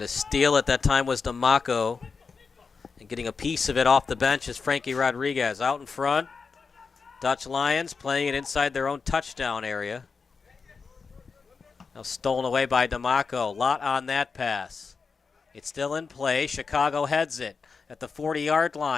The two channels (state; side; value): quieter; right; 5.1 dB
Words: steal at that time was D'Amaco. And getting a piece of it off the bench is Frankie Rodriguez. Out in front, Dutch Lions playing it inside their own touchdown area. Now stolen away by D'Amaco. Lot on that pass. It's still in play. Chicago heads it at the 40-yard